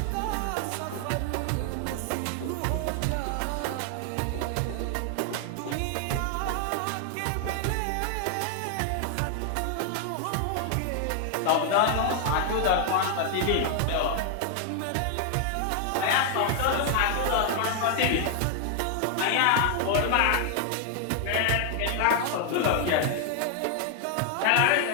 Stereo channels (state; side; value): different; both; correlation 0.00